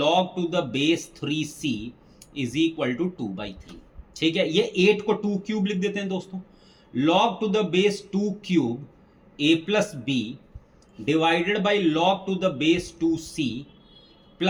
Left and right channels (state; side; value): identical; both; correlation 1.00